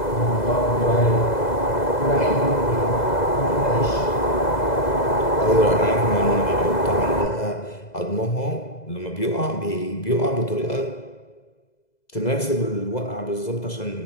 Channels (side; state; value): right; late; 2.0 ms